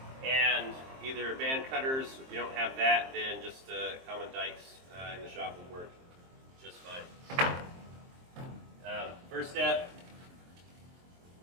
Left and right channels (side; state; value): left; late; 23 ms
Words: and either band cutters. If you don't have that, then just common dikes in the shop will work just fine. First step